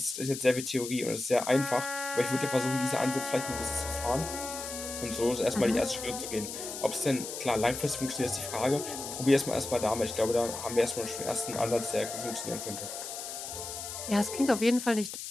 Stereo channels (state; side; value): noise; left; hiss, 8 dB below the sound